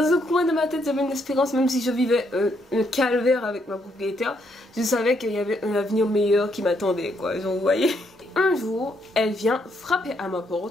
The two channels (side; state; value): both; normal; correlation 0.74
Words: un coin de ma tête, j'avais une espérance même si je vivais un calvaire avec ma propriétaire. Je savais qu'il y avait un avenir meilleur qui m'attendait quoi, genre vous voyez. Un jour, elle vient frapper à ma